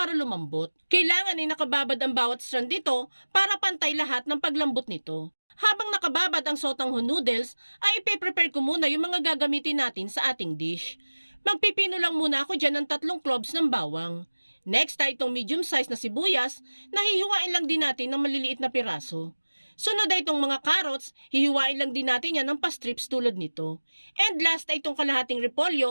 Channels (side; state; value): both; inverted; correlation -1.00